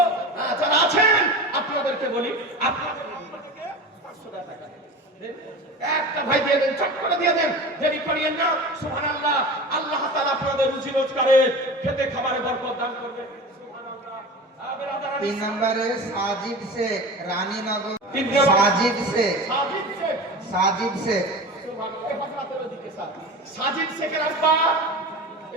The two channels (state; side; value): normal; both; correlation 0.32